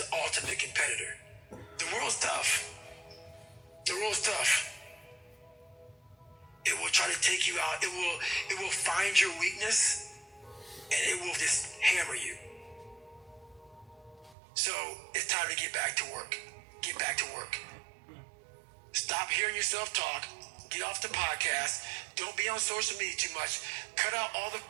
ultimate competitor. The world's tough. The world's tough. It will try to take you out. It will find your weakness and it will just hammer you. So it's time to get back to work. Get back to work. Stop hearing yourself talk. Get off the podcast. Don't be on social media too much. Cut out all the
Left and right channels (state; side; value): drops out; left; at 14.4 s